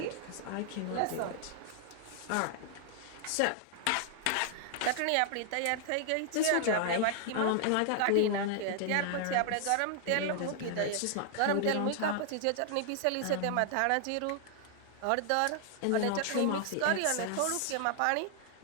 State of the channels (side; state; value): both; different; correlation 0.00